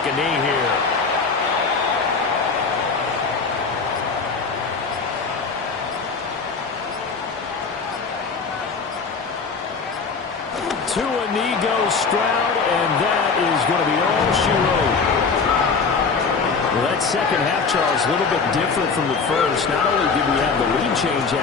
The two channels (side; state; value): right; quieter; 4.9 dB